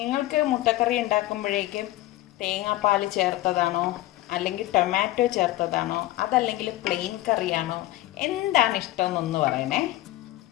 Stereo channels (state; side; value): quieter; right; 16.5 dB